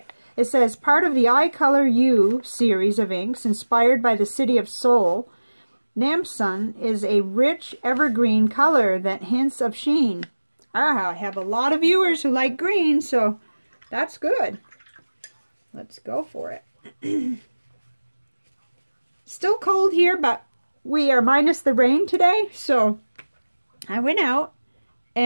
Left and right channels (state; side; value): inverted; both; correlation -1.00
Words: it says, part of the I Color You series of inks inspired by the city of Seoul, Namsan is a rich evergreen color that hints of sheen. I have a lot of viewers who like green, so that's good. Let's go for it. Still cold here, but we are minus the rain today, so I went out